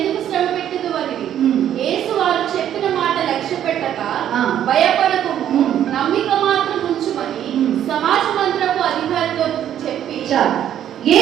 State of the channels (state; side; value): quieter; left; 10.6 dB